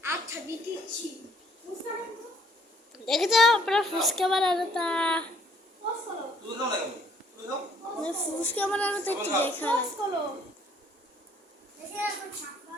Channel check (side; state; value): both; normal; correlation 0.62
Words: আচ্ছা দিচ্ছি দেখে যাও আপনার ফুসকা বানানো তা ফুসকা বানানো তো একটু দেখা দেখে এখন সাপা